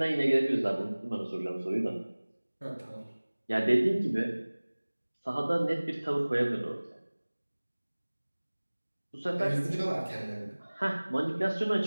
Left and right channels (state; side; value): inverted; both; correlation -1.00